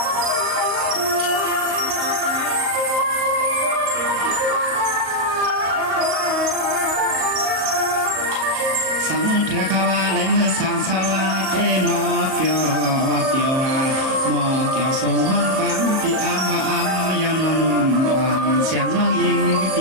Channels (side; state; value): left; late; 38 ms